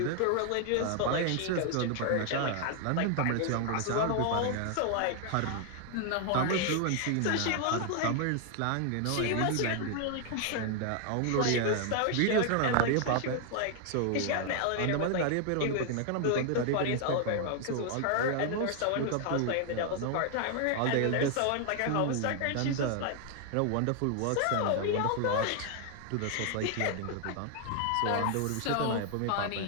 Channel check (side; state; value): both; different; correlation 0.00